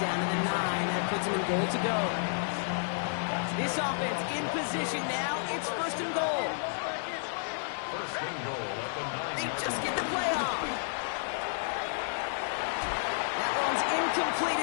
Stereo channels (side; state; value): right; silent; digital silence